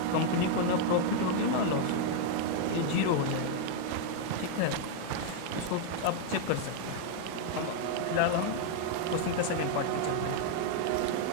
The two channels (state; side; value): different; both; correlation 0.00